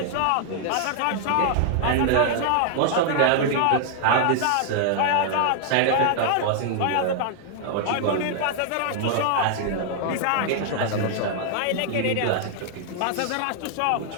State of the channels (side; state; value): both; different; correlation 0.00